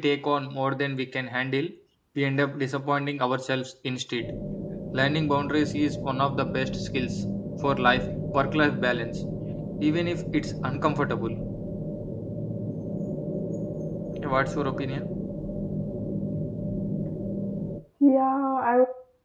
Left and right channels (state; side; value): identical; both; correlation 1.00